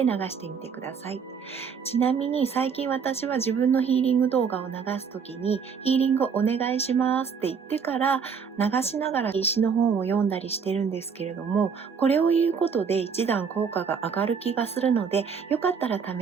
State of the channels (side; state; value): left; quieter; 6.2 dB